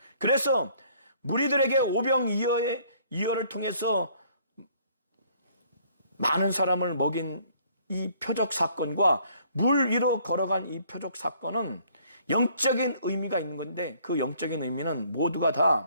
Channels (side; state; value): both; inverted; correlation -0.61